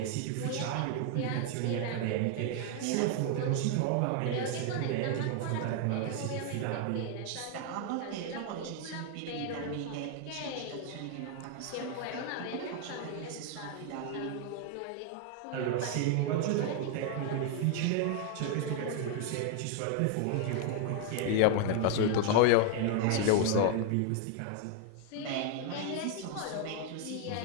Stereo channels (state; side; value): different; both; correlation 0.00